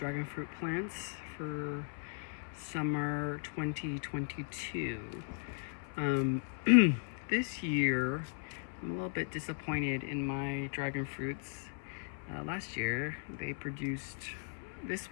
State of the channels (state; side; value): silent; right; 53 dB below the other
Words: fruit plants for summer 2022. Um, this year, I'm a little bit disappointed in my dragon fruits. Last year, they produced this